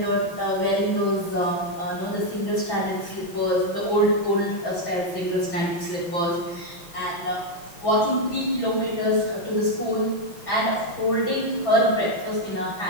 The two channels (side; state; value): right; late; 6.0 ms